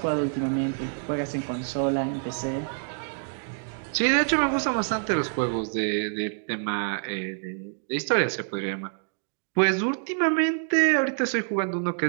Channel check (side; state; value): left; silent; digital silence